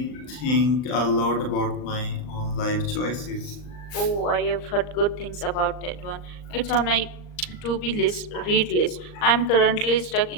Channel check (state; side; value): late; right; 39 ms